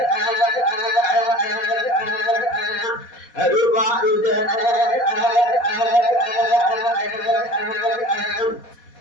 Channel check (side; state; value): right; late; 4.1 ms